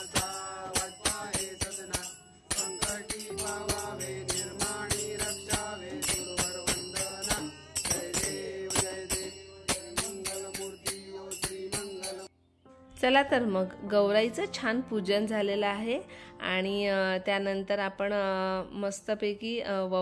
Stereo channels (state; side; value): identical; both; correlation 1.00